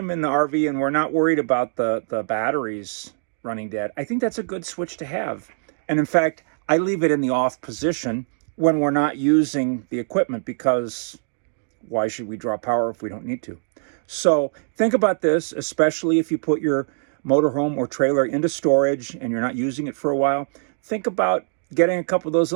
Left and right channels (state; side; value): silent; left; digital silence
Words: in the RV and we're not worried about the batteries running dead, I think that's a good switch to have. And in fact, I leave it in the off position when we're not using the equipment, because why should we draw power if we don't need to? So think about this, especially if you put your motorhome or trailer into storage and you're not using it for a while. Think about getting a couple of those